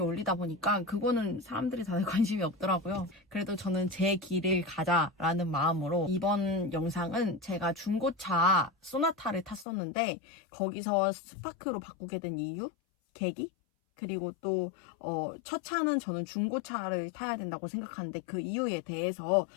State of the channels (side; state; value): right; drops out; at 9.7 s